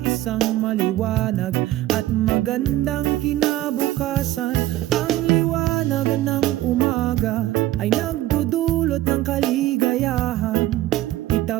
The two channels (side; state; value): left; quieter; 15.3 dB